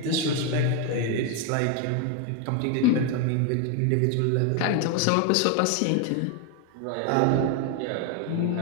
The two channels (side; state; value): both; different; correlation 0.01